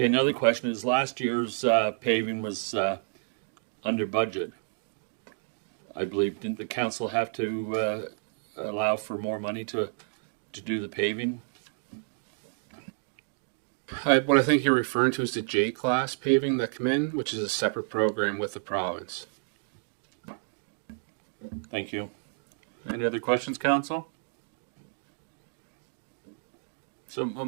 another question is last year's paving was under budget. I believe, didn't the council have to allow for more money to do the paving? What I think you're referring to is the J-class paving that come in, which is a separate program with the province. Thank you. Any other questions, Council? So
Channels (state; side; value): silent; left; digital silence